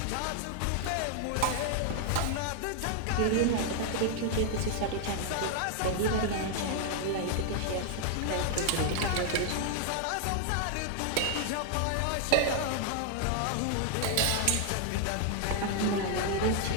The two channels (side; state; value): both; different; correlation 0.00